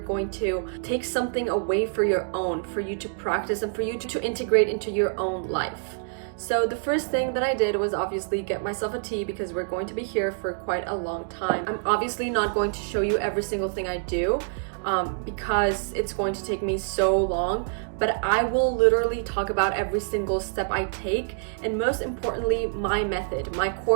to take something away for your own, for you to practice and for you to integrate into your own life. So the first thing that I did was obviously get myself a tea because we're going to be here for quite a long time. I'm obviously not going to show you every single thing I do because it's going to take me so long, but I will literally talk about every single step I take, and most importantly, my method, my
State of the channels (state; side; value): silent; left; digital silence